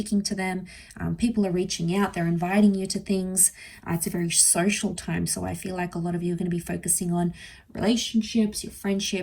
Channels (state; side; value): identical; both; correlation 1.00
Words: to them. People are reaching out, they're inviting you to things. It's a very social time, so I feel like a lot of you are going to be focusing on relationships, your